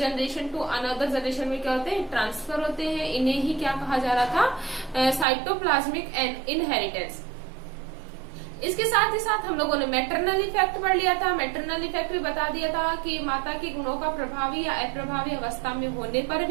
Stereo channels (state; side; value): drops out; left; at 5.2 s